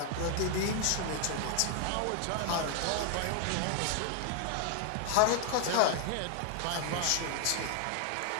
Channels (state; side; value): different; both; correlation 0.00